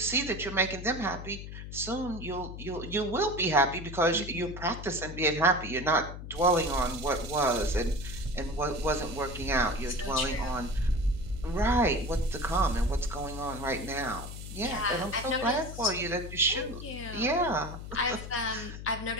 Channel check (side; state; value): left; noise; hum, 10 dB below the sound